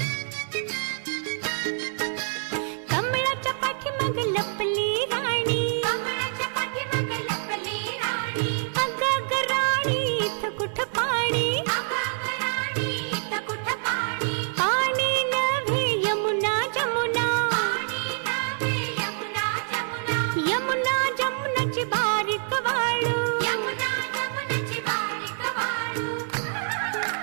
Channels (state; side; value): silent; left; 61 dB below the other